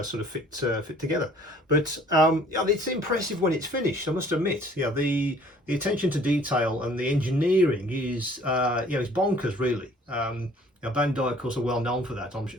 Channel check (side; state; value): both; normal; correlation 0.55